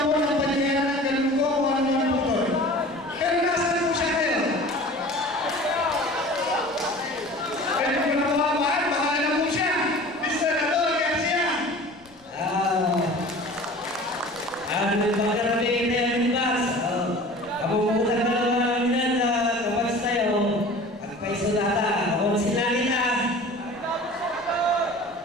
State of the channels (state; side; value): noise; left; rumble, 28 dB below the sound